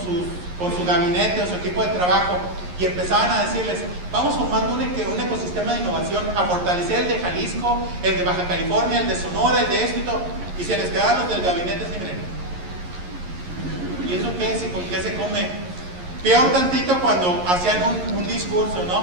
su gabinete o su equipo de trabajo y empezaban a decirles, vamos formando un ecosistema de innovación a fortalecer el de Jalisco, el de Baja California, el de Sonora, el de esto y todo, y se les quedaban los del gabinete así, miren, ¿y eso qué es? ¿Y con qué se come? Peor tantito cuando hacían un discurso,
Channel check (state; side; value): late; left; 11 ms